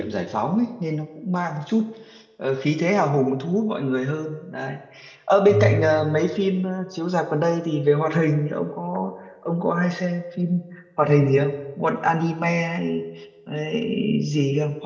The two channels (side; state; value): both; identical; correlation 1.00